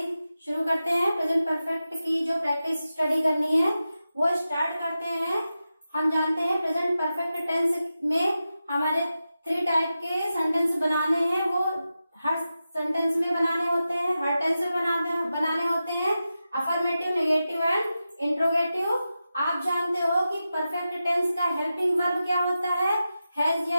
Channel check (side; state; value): both; inverted; correlation -0.92